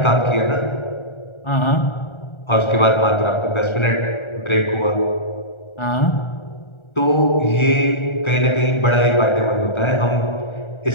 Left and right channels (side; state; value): right; late; 1.4 ms